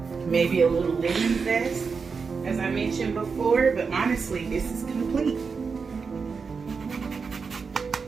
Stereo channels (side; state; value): left; quieter; 5.2 dB